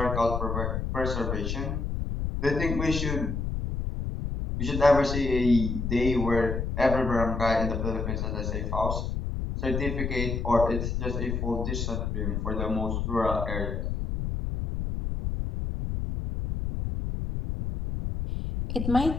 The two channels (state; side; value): noise; left; rumble, 2 dB below the sound